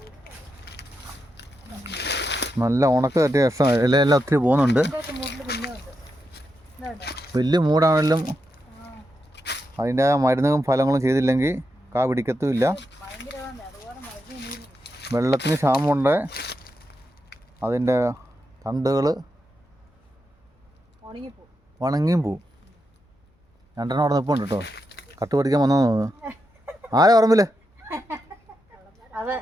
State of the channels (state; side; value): normal; both; correlation 0.85